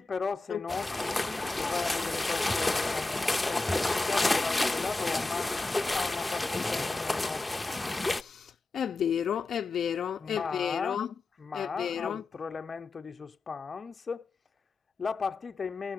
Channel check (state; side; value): quieter; right; 3.6 dB